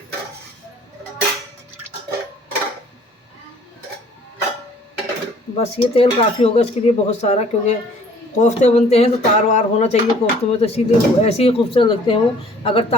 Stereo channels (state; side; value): normal; both; correlation 0.55